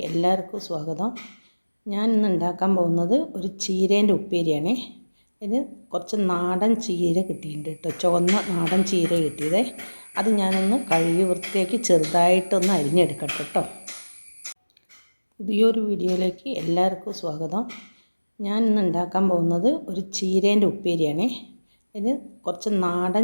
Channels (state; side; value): inverted; both; correlation -1.00